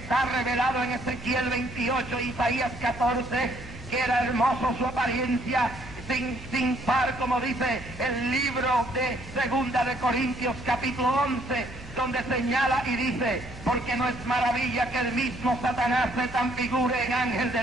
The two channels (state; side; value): normal; both; correlation 0.67